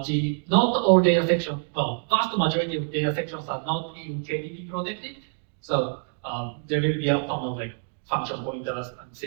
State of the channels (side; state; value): left; silent; 61 dB below the other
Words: all data sections, well, vast majority of data sections are not in KDP protected. So there will be a ton of like function pointers and